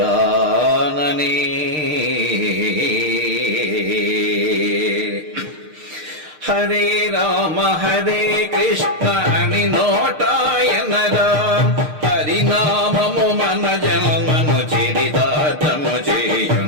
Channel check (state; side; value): late; left; 6.5 ms